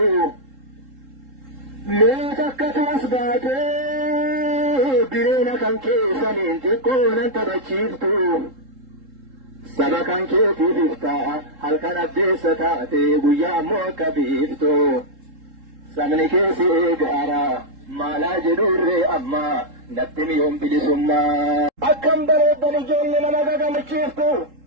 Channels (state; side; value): late; left; 3.7 ms